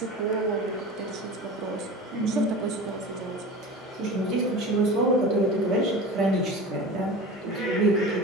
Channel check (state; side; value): normal; both; correlation 0.33